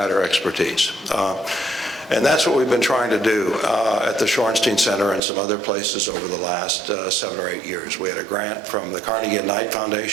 expertise. And that's what we've been trying to do at the Shorenstein Center and some other places over the last 7 or 8 years. We had a grant from the Carnegie and Knight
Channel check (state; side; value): drops out; left; at 5.2 s